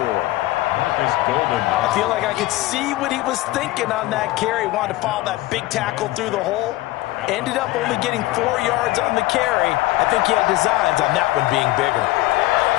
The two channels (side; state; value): right; quieter; 18.1 dB